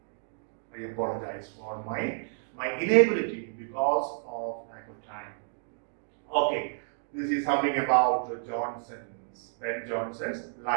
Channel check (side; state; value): left; silent; digital silence